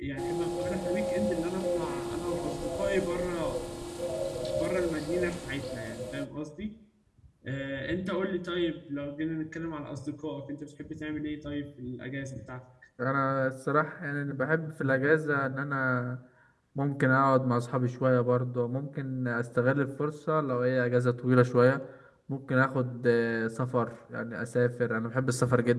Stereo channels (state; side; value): identical; both; correlation 1.00